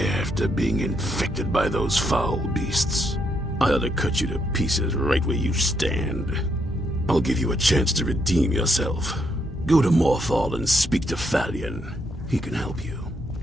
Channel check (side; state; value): both; normal; correlation 0.77